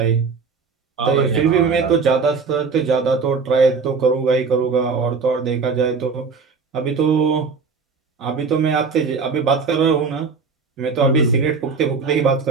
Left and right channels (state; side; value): quieter; left; 5.0 dB